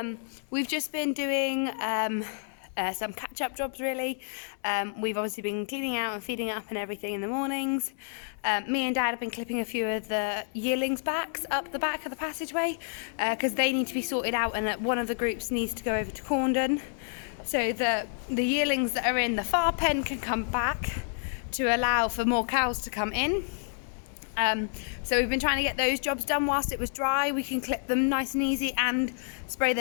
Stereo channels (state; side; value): silent; right; digital silence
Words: we've just been doing some catch-up jobs really. We've obviously been cleaning out and feeding up and everything in the mornings. Me and Dad have been clipping a few of the yearlings' backs up the back of the passageway because they need to be sorted out, and one of the groups needs to go over to Corndon so that the yearlings that are in the far pen can come back to allow for more cows to come in. So we've been trying to get those jobs done whilst it was dry. We can clip them nice and easy and spray